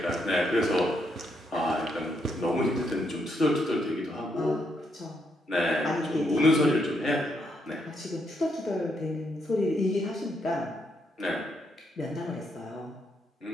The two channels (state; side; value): normal; both; correlation 0.77